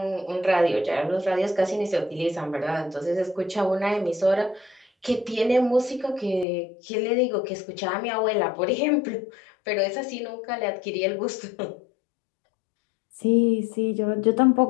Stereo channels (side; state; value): right; drops out; at 6.5 s